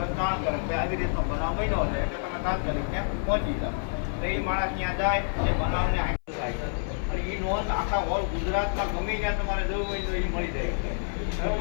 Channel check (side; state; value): right; silent; 58 dB below the other